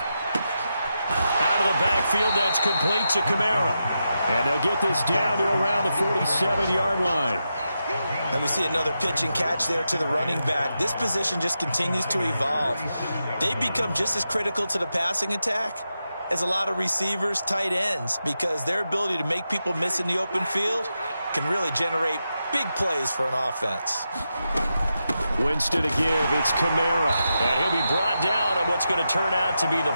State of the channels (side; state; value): both; inverted; correlation -0.88